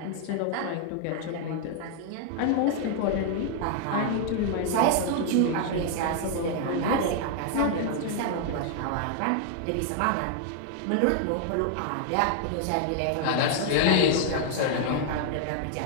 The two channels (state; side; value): different; both; correlation 0.00